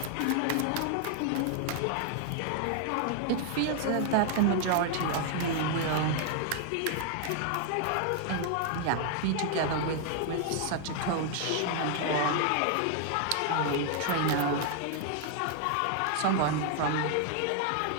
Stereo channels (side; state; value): both; different; correlation 0.00